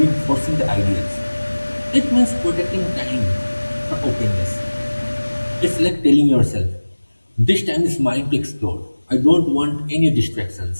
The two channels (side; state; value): both; inverted; correlation -1.00